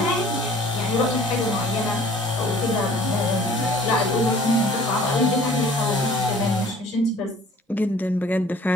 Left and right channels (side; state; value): both; normal; correlation 0.51